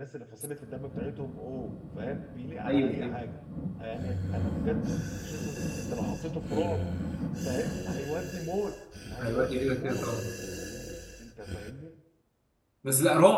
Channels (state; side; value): identical; both; correlation 1.00